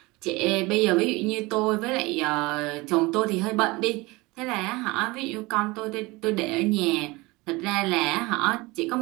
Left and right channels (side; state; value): left; quieter; 22.9 dB